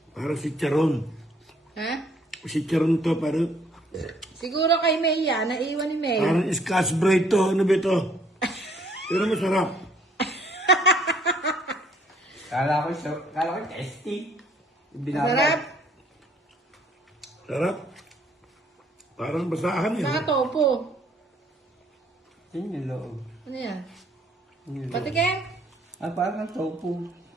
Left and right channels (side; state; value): both; normal; correlation 0.62